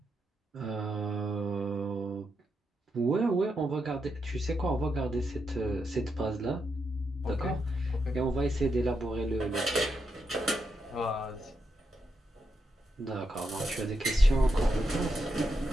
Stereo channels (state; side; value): normal; both; correlation 0.83